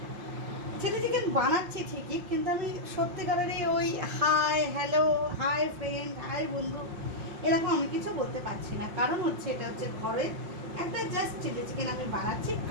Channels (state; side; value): late; left; 5.7 ms